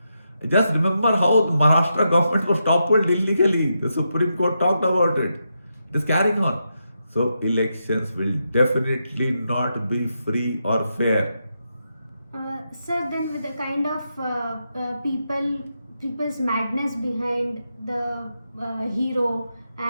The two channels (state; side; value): inverted; both; correlation -0.85